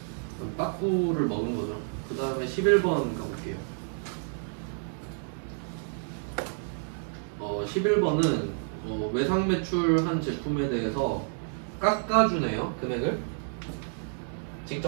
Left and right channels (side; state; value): left; silent; 58 dB below the other